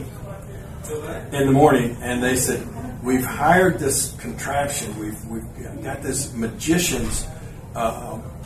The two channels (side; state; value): both; identical; correlation 1.00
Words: in the morning, and they said, "We've hired this contraption. We've got this magician's